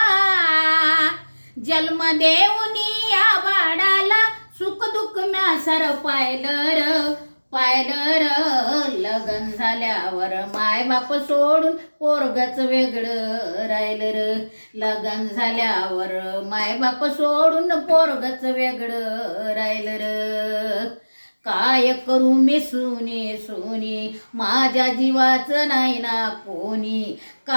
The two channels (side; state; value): both; inverted; correlation -1.00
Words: जन्म देऊनी या बाळाला, सुख दुःख म्या सर पायलं र, लग्न झाल्यावर माय बाप सोडून पोरगच वेगळं राहिलं र, लग्न झाल्यावर माय बाप सोडून पोरगच वेगळं राहिलं र। काय करू मी सुनी माझ्या जीवाचं नाही ना कोणी,